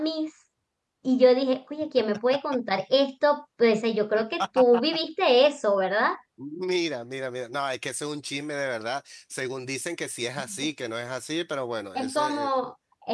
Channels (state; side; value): identical; both; correlation 1.00